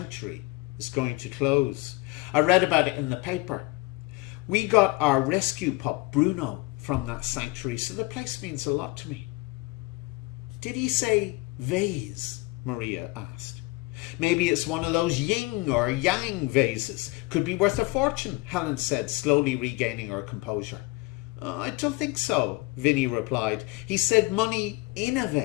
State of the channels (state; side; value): quieter; right; 23.1 dB